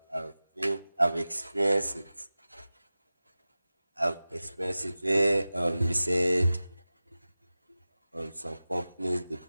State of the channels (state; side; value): inverted; both; correlation -0.96